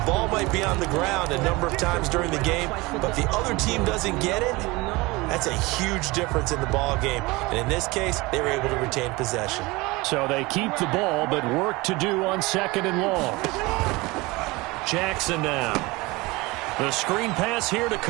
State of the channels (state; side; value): quieter; left; 22.8 dB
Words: ball might be on the ground a number of times during the game, but the other team doesn't get it. That's a huge difference in the ball game. And in this case, they were able to retain possession. So they keep the ball, but work to do on 2nd and long. Jackson now. The screen pass here to